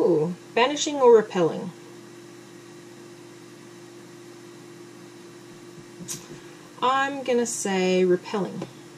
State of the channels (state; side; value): identical; both; correlation 1.00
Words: Banishing or repelling? I'm gonna say repelling.